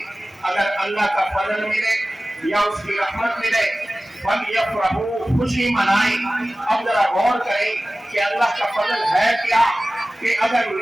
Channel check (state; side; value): normal; both; correlation 0.97